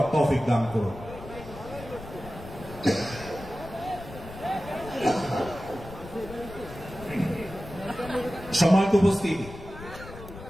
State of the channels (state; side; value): noise; left; rumble, 14 dB below the sound